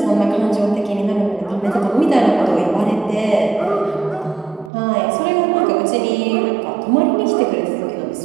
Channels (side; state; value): left; drops out; at 4.7 s